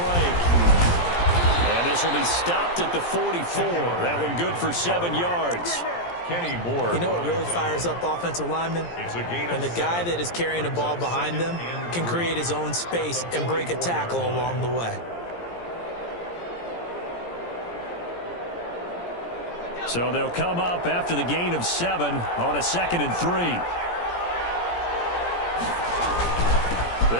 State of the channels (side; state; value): right; late; 17 ms